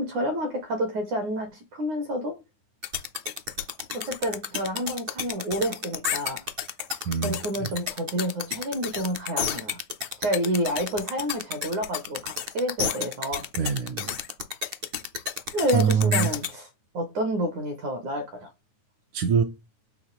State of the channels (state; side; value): late; left; 9.6 ms